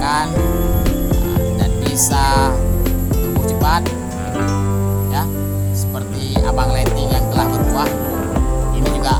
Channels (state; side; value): identical; both; correlation 1.00